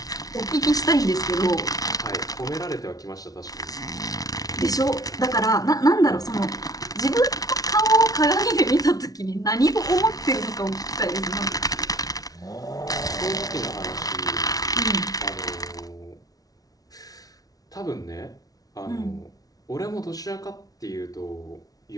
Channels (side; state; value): right; late; 0.18 ms